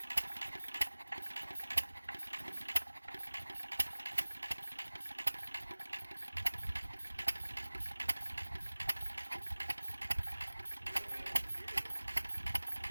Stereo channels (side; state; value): both; inverted; correlation -1.00